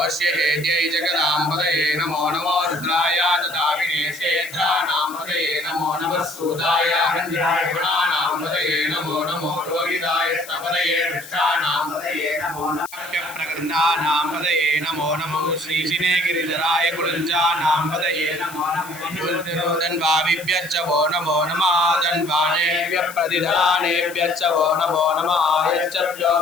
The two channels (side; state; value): left; noise; hiss, 16 dB below the sound